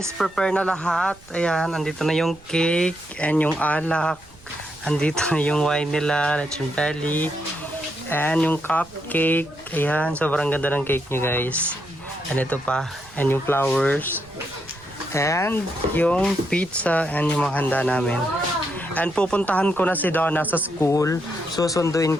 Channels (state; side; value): noise; right; rumble, 24 dB below the sound